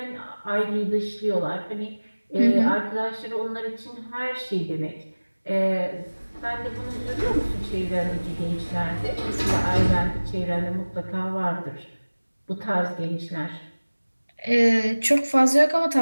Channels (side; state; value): both; inverted; correlation -1.00